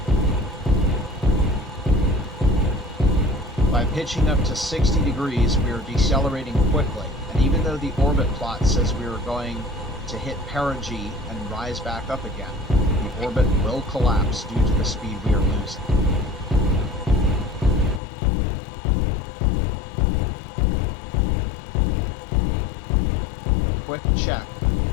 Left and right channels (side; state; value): right; drops out; at 18.0 s